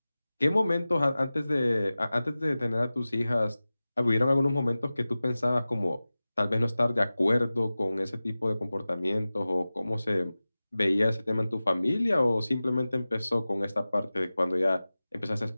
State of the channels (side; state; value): both; inverted; correlation -0.97